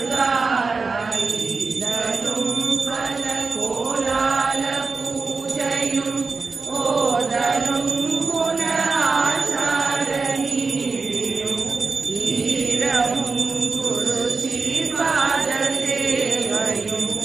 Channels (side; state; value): left; quieter; 4.3 dB